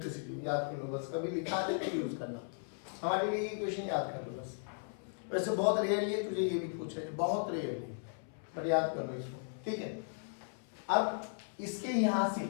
याद कर लो बस, कभी लिखा करके यूज करना, हमारे लिए ये इक्वेशन याद कर लो बस। वैसे बहुत रेयरली तुझे ये भी पूछा है, बहुत रेयरली, बट याद कर लो इसको, ठीक है। अब इसके यहां से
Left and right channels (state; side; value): silent; right; 53 dB below the other